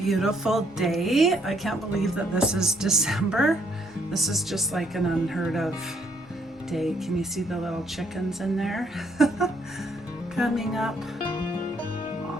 day. I can't believe that this is December. This is just like an unheard of day. Can you see the little chickens in there? Coming up.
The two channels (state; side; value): normal; both; correlation 0.69